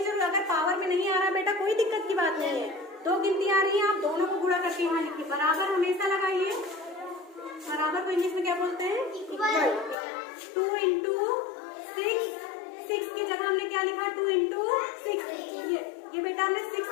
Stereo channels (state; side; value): drops out; right; at 10.0 s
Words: जरूर, अगर पावर में नहीं आ रहा बेटा कोई दिक्कत की बात नहीं है। 2 गिनती आ रही है, आप दोनों को गुणा करके यहाँ लिखिए। बराबर हमेशा लगाइए। बराबर को इंग्लिश में क्या बोलते हैं? 2 इंटू 6 की जगह हमने क्या लिखा? 2 इंटू 6। ये बेटा हमने 6